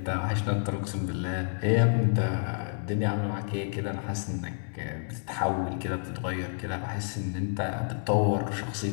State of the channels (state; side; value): silent; right; digital silence